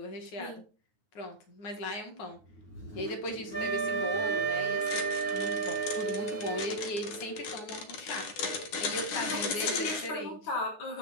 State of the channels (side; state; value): right; late; 9.5 ms